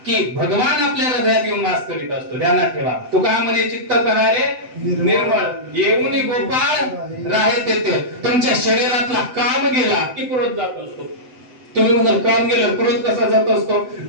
की भगवान आपल्या हृदयात येऊन वास करीत असतो. ध्यानात ठेवा, तुका म्हणे चित्त करारे निर्मळ, येऊन गोपाळ राहे तेथे. तुमच्या शरीरातला काम गेला की क्रोध जात असतो. तुम्ही म्हणाल काम गेलं, क्रोध कसा जात असतो?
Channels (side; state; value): left; late; 7.9 ms